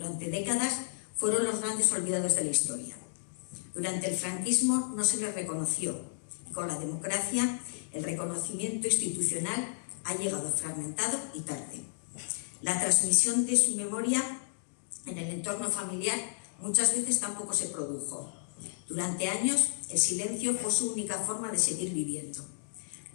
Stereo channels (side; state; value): right; silent; digital silence